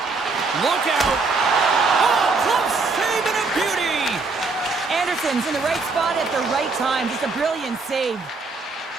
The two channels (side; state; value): left; quieter; 4.0 dB